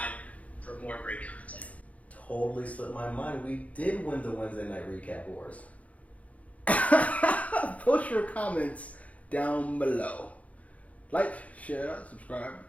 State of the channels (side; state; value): right; late; 0.067 ms